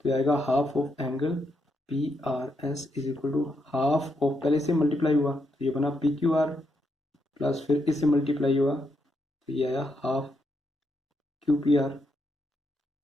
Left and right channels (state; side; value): normal; both; correlation 0.80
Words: ये आएगा half of angle P R S is equal to half of, पहले से मल्टीप्लाई हुआ तो ये बना पी क्यू आर प्लस फिर इससे मल्टीप्लाई हुआ तो ये आया half Q P R,